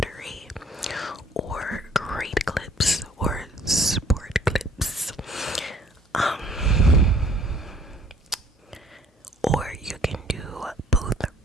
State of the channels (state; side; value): normal; both; correlation 0.59